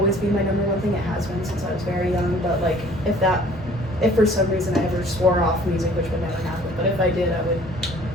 be my number one thing. It has been since I was very young. But like if for some reason I ever swore off music, which would never happen, but if I did, I would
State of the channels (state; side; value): normal; both; correlation 0.54